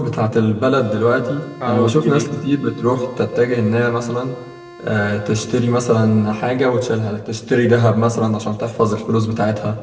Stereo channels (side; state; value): both; identical; correlation 1.00